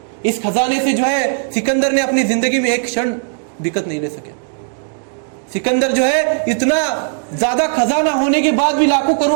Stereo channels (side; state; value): left; silent; digital silence